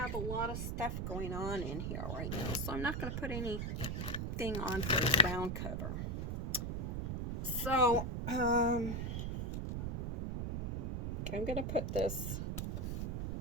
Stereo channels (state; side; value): noise; right; rumble, 2 dB below the sound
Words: a lot of stuff going on in here right now, so I'm not going to put anything on for the ground cover. So, I'm going to put this